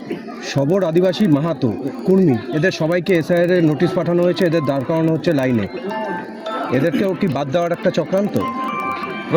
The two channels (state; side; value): identical; both; correlation 1.00